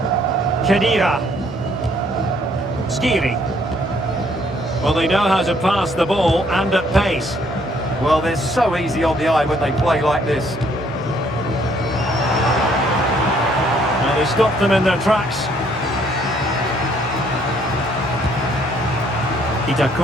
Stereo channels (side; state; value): both; normal; correlation 0.65